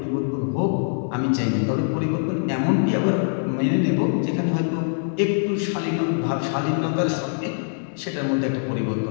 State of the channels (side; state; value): right; silent; digital silence